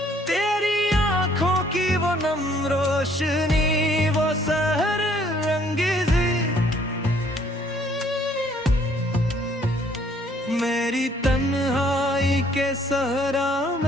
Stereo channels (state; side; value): normal; both; correlation 0.62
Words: वो नम रोशनी वो सहर रंगीजी मेरी तन्हाई के सहरा